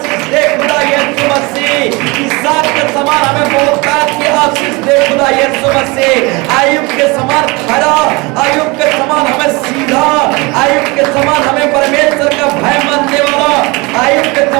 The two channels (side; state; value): left; quieter; 25.7 dB